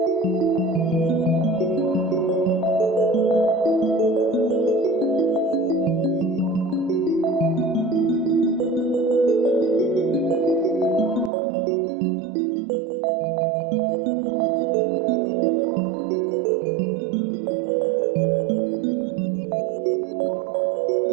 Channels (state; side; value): drops out; left; at 11.3 s